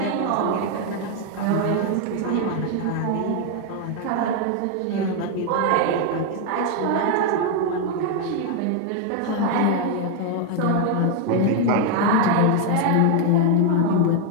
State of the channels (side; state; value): both; different; correlation 0.01